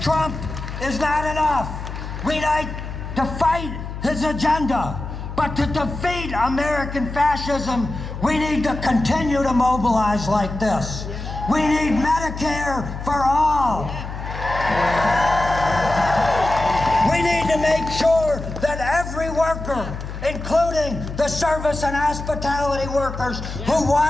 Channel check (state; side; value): noise; left; hum, 8 dB below the sound